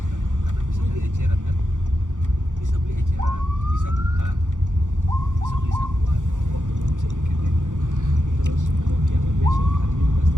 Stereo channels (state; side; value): late; left; 0.86 ms